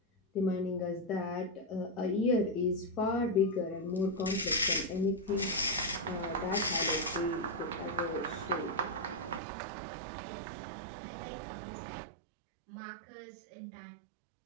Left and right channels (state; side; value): drops out; left; at 9.4 s